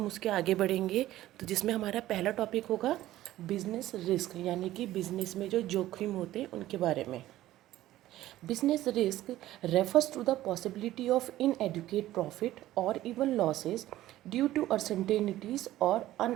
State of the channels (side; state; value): left; quieter; 14.8 dB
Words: उसके आगे बढ़ेंगे, तो जिसमें हमारा पहला टॉपिक होगा बिजनेस रिस्क, यानी कि बिजनेस में जो जोखिम होते हैं उनके बारे में। Business risk refers to the possibility of inadequate profit और even losses due to uncertainties और